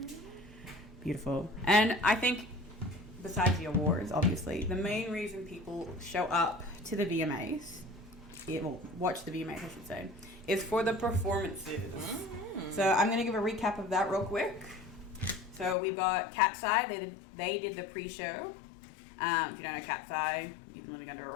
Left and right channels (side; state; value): right; drops out; at 15.8 s